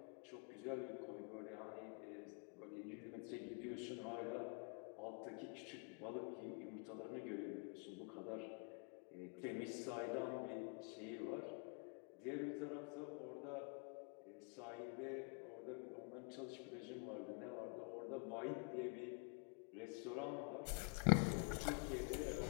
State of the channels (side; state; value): right; quieter; 38.5 dB